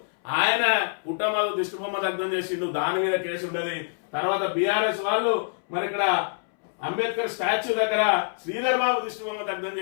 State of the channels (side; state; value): right; silent; 61 dB below the other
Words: ఆయన కుటుంబాలు దిష్టిబొమ్మ దగ్ధం చేసిండు, దాని మీద కేసు ఉన్నది. తర్వాత బీఆర్ఎస్ వాళ్ళు మరి ఇక్కడ అంబేద్కర్ స్టాచ్యూ దగ్గర శ్రీధర్ బాబు దిష్టిబొమ్మ దగ్ధం